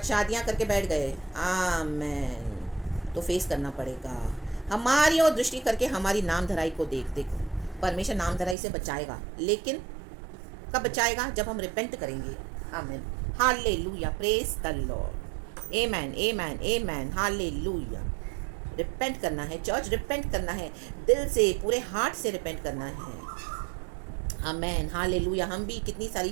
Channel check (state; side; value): drops out; left; at 8.6 s